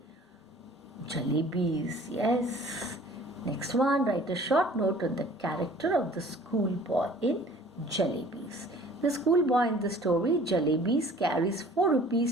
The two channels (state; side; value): normal; both; correlation 0.50